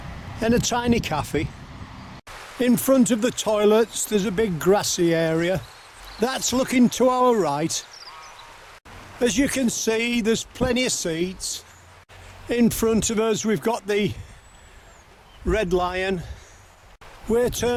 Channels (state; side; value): identical; both; correlation 1.00